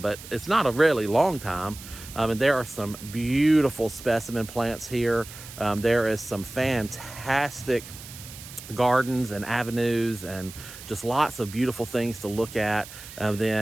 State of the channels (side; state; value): right; noise; hiss, 15 dB below the sound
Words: but it's not a really long time. And there are some beautiful specimen plants here. There is some fantastic gardens and avenues and just lots of beautiful things to look at.